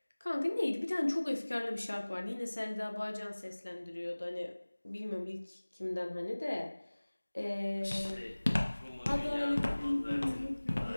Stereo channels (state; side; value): inverted; both; correlation -1.00